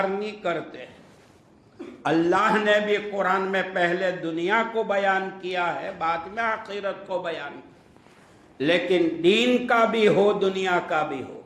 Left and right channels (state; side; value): identical; both; correlation 1.00